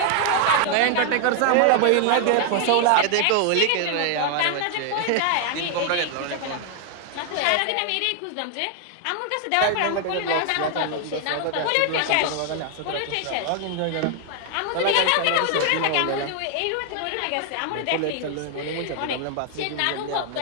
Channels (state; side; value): different; both; correlation 0.00